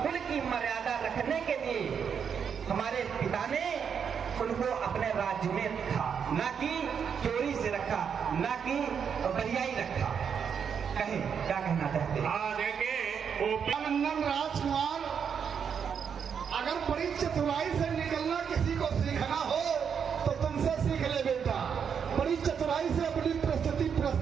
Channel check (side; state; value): left; quieter; 7.1 dB